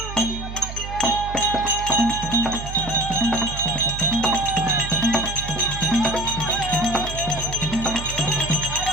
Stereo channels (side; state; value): right; noise; hum, 9 dB below the sound